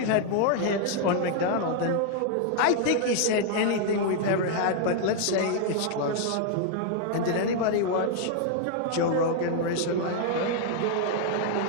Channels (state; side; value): different; both; correlation 0.00